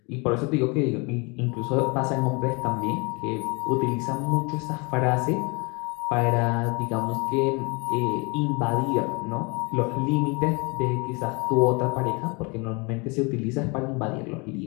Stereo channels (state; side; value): quieter; right; 29.6 dB